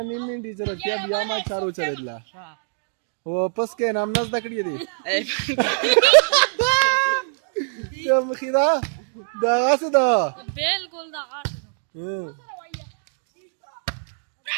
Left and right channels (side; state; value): left; silent; digital silence